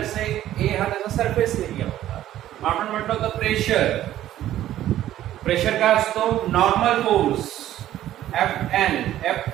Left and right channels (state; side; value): quieter; left; 12.9 dB